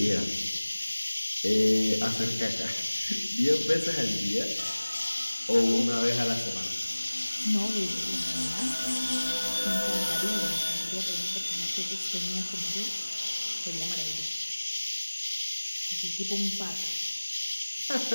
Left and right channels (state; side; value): inverted; both; correlation -1.00